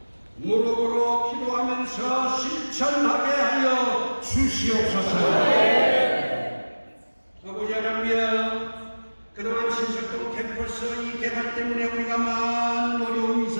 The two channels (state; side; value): inverted; both; correlation -1.00